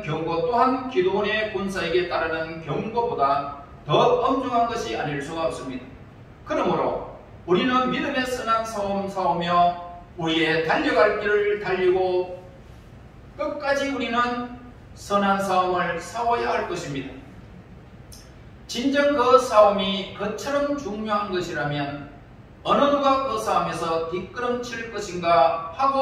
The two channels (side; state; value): both; identical; correlation 1.00